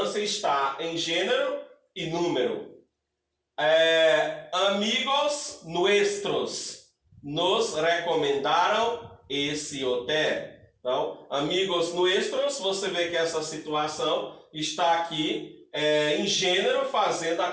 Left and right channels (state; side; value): identical; both; correlation 1.00